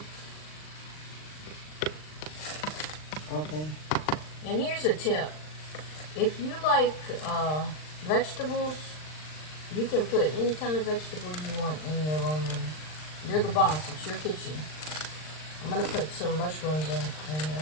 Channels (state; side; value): late; right; 39 ms